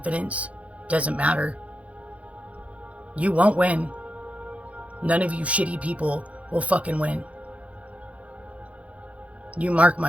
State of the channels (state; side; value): late; left; 0.065 ms